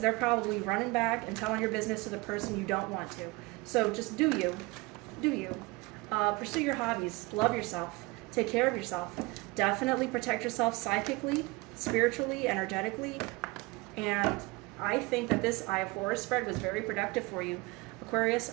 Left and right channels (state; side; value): quieter; left; 24.0 dB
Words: they're probably running back and telling your business to the person you don't want to. So just do you. Pursue your hobbies. Love yourself. Take care of yourself. Definitely protect yourself psychically, spiritually, energetically. And I think that this Eye of Horus spread was very productive for you. Aquarius,